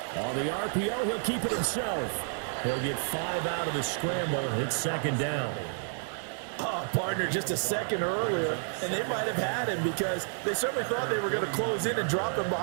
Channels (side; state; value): left; silent; 58 dB below the other